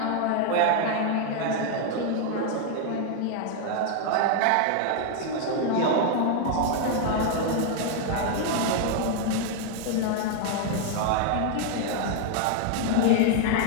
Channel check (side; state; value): both; different; correlation 0.00